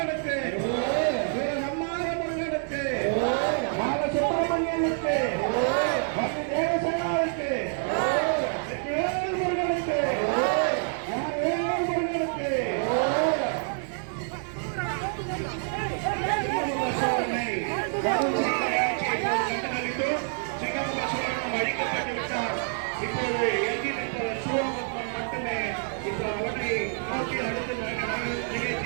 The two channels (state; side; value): silent; left; 57 dB below the other